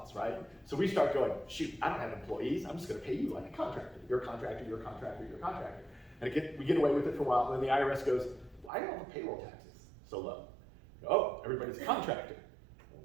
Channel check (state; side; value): drops out; left; at 8.7 s